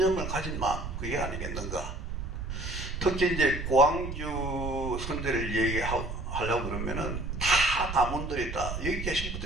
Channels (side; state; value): right; noise; rumble, 6 dB below the sound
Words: 가진 마음, 그게 아니겠는가. 특히 이제 고항주 선대를 얘기하려고 그러면은 다 가문들이 다 여기 계신